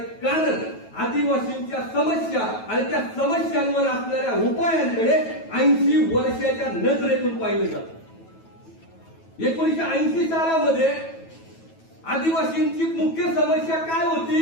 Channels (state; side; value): late; right; 9.2 ms